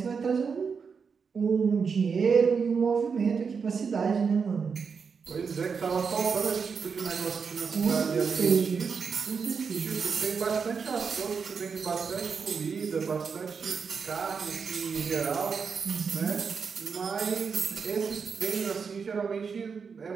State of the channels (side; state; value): left; quieter; 5.8 dB